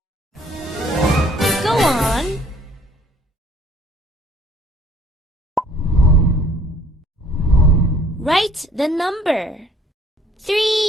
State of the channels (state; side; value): normal; both; correlation 0.58